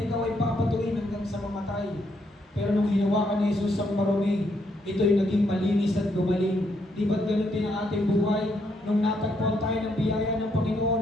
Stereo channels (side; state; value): both; normal; correlation 0.75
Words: ay papatuin hanggang sa mamatay. Pero nung hinawakan ni Jesus ang marumi, ito'y naging malinis at gumaling. Di ba't ganun din ang ating buhay? Nung natagpuan tayo ng biyaya ng